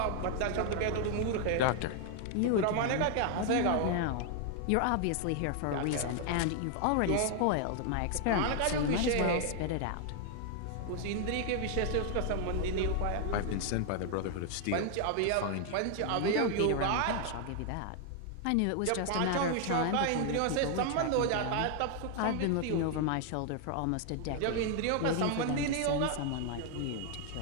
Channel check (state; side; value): different; both; correlation 0.00